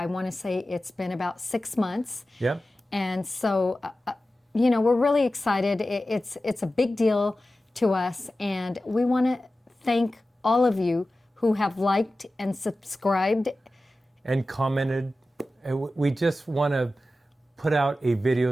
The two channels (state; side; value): normal; both; correlation 0.94